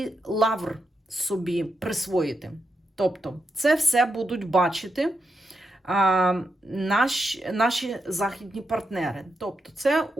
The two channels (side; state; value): both; normal; correlation 0.84